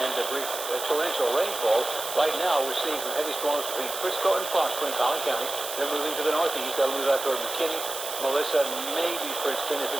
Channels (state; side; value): noise; right; hiss, 7 dB below the sound